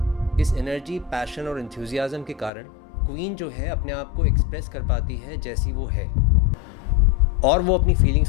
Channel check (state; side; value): drops out; right; at 2.5 s